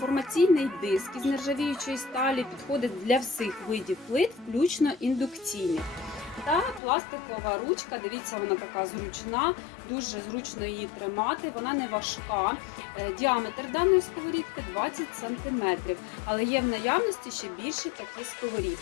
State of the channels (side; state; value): right; drops out; at 6.8 s